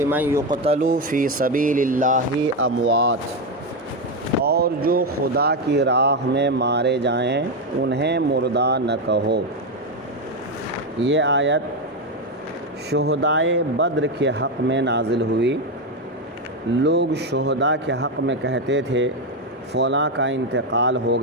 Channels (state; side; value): normal; both; correlation 0.09